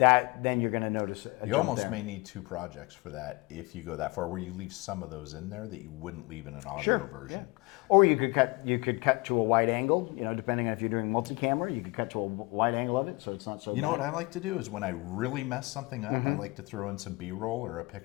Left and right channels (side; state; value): right; quieter; 24.8 dB